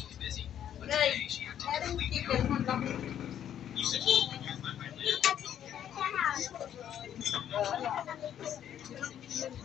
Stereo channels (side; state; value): right; quieter; 10.1 dB